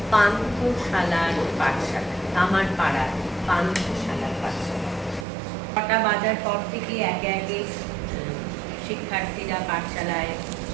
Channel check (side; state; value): left; drops out; at 5.2 s